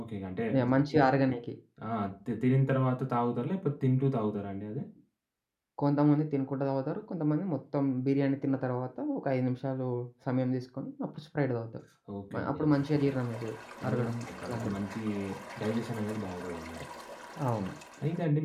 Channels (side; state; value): both; identical; correlation 1.00